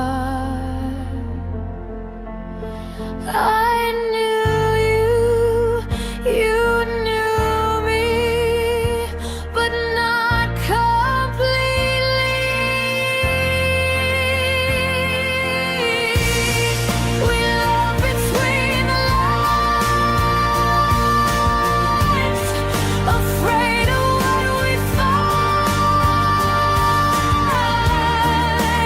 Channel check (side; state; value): both; identical; correlation 1.00